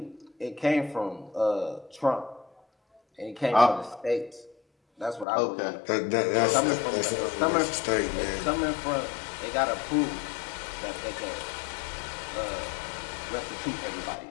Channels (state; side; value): drops out; right; at 5.2 s